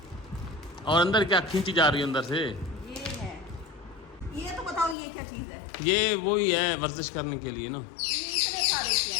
और अंदर क्या खींची जा रही है अंदर से? ये है। ये तो बताओ ये क्या चीज है? ये वही है वर्जिश करने के लिए ना। ये इतने सारे क्या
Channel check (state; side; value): drops out; right; at 5.0 s